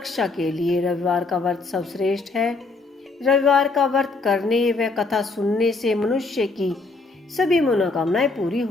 के लिए रविवार का व्रत सर्वश्रेष्ठ है। रविवार का व्रत करने व कथा सुनने से मनुष्य की सभी मनोकामनाएं पूरी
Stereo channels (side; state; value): right; quieter; 3.6 dB